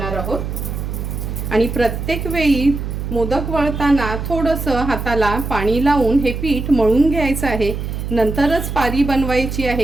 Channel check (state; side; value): noise; right; hum, 5 dB below the sound